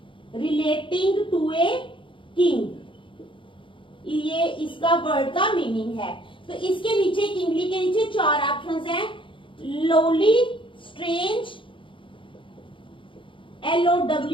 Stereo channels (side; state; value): right; late; 0.25 ms